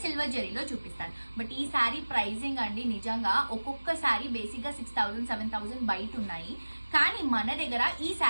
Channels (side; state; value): both; inverted; correlation -1.00